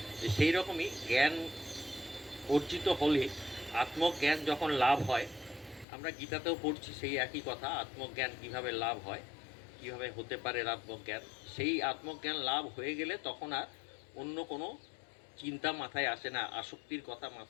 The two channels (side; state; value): right; drops out; at 5.9 s